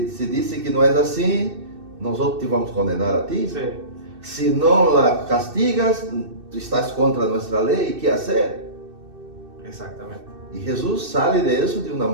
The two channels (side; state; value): left; late; 2.6 ms